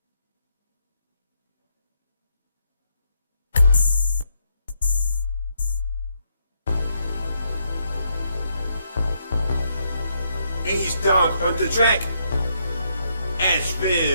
East Dog on the track.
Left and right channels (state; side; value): inverted; both; correlation -0.75